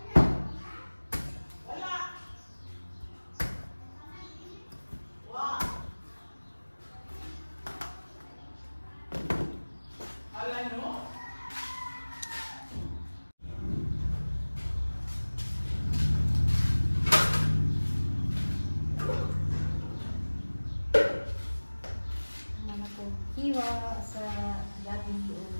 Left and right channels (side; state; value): both; inverted; correlation -1.00